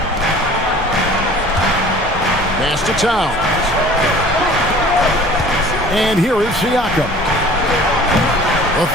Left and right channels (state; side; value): normal; both; correlation 0.47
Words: Pass to Towns. And here is Siakam. A